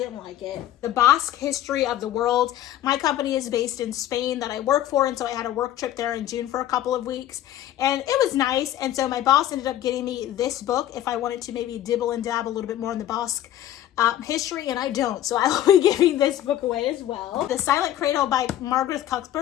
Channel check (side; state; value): right; quieter; 12.4 dB